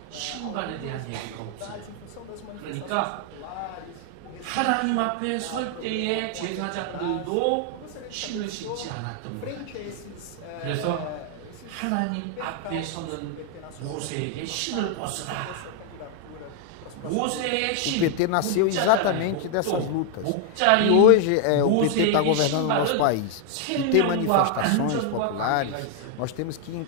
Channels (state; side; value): different; both; correlation 0.00